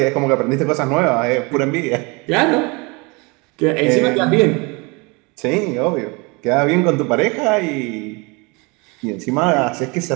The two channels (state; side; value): quieter; left; 28.0 dB